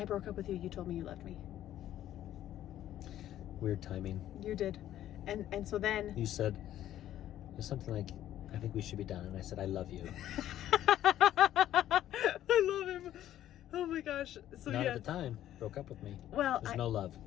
broke up with you, you told me you loved me. Weird timing. You did. And so then... You said, there's something like, I think we should be done. And I said, I love you. I love him. Oh my gosh. So Not yeah. at the time. Broke up with me. Well, There's no love.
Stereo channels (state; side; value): quieter; right; 12.3 dB